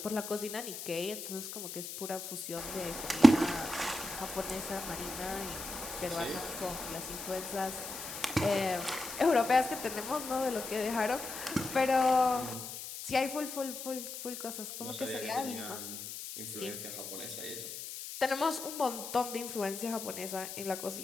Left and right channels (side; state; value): left; noise; hiss, 8 dB below the sound